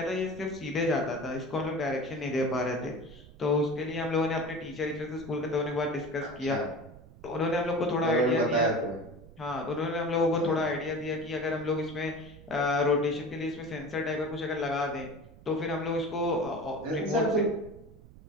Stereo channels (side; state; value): right; noise; rumble, 20 dB below the sound